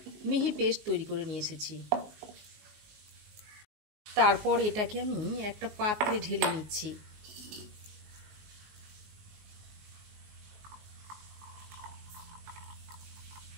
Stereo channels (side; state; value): left; late; 19 ms